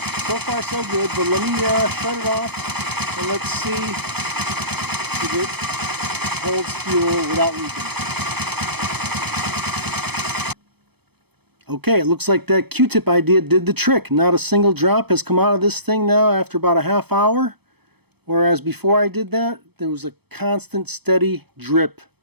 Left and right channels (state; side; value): late; left; 0.97 ms